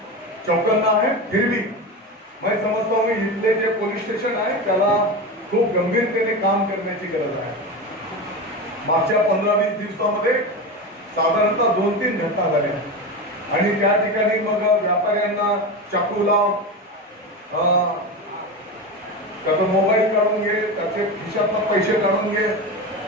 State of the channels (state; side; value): normal; both; correlation 0.22